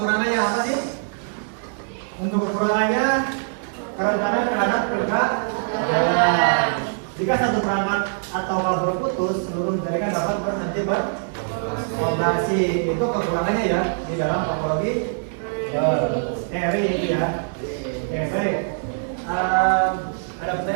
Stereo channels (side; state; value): left; silent; 63 dB below the other